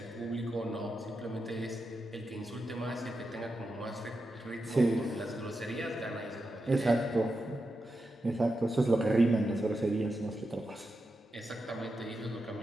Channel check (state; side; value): normal; both; correlation 0.88